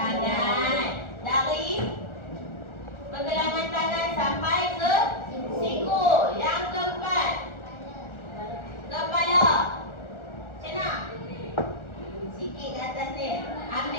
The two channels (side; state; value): right; late; 1.4 ms